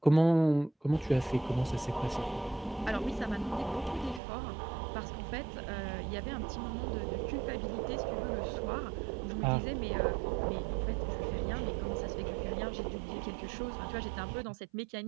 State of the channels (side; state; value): left; drops out; at 4.2 s